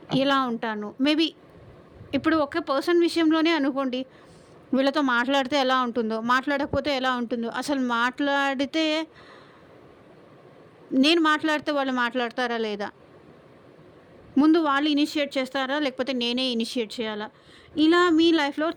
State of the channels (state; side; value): identical; both; correlation 1.00